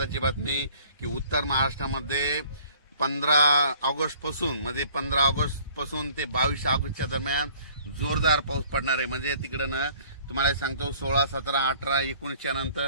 बातमी की उत्तर महाराष्ट्रामध्ये 15 ऑगस्ट पासून ते 22 ऑगस्टच्या दरम्यान जोरदार पाऊस पडणार आहे. म्हणजे तिकडं ना तुम्हाला सांगतो 16, 17, 18, 19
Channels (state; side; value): inverted; both; correlation -0.55